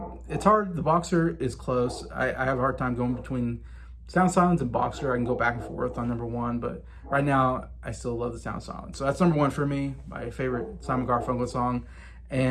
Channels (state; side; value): identical; both; correlation 1.00